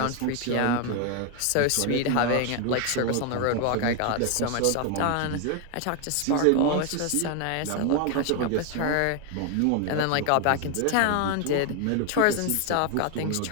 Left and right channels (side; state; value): both; different; correlation 0.01